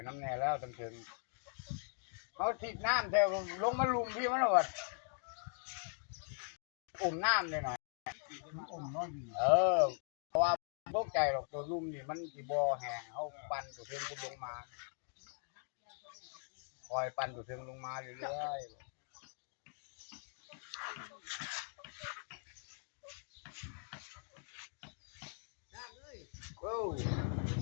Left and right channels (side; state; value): right; silent; 51 dB below the other